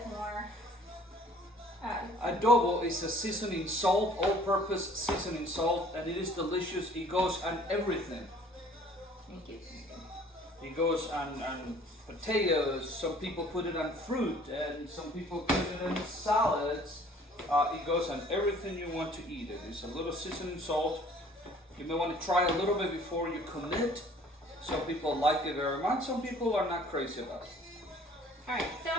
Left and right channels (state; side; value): normal; both; correlation 0.54